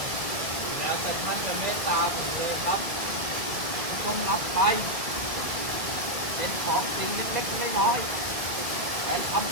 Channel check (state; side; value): late; left; 1.7 ms